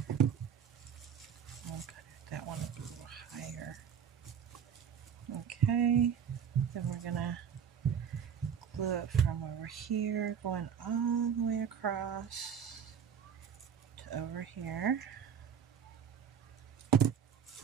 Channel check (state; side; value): quieter; left; 7.8 dB